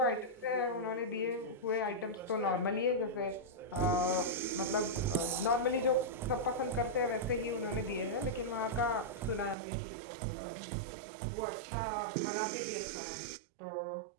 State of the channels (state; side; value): drops out; left; at 9.6 s